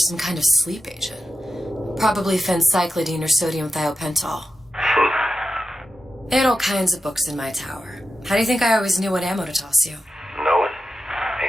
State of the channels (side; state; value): both; normal; correlation 0.90